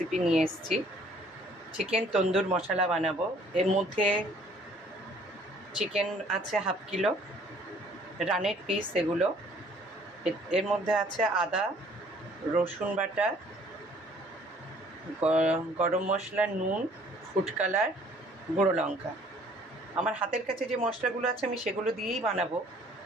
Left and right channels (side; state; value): both; normal; correlation 0.58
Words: নিয়ে এসেছি, চিকেন তন্দুর মশলা বানাবো। এর মধ্যে চিকেন আছে হাফ কিলো, রানের পিস এগুলো। এর মধ্যে আছে আদা, রসুন বাটা, গরম মশলা, নুন, ফুড কালার, গুঁড়ো লঙ্কা। আমার হাতের কাছে যে মশলাগুলো আছে আমি সেগুলো দিয়েই বানাবো,